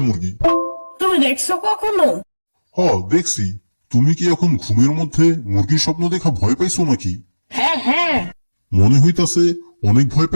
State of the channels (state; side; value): inverted; both; correlation -1.00